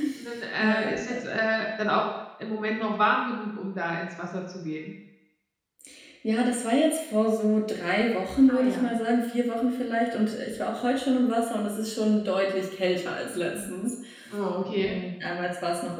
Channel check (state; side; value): identical; both; correlation 1.00